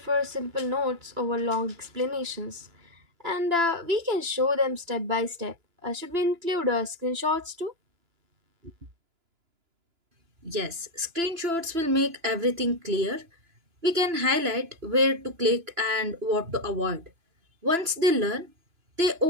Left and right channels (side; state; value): left; late; 2.9 ms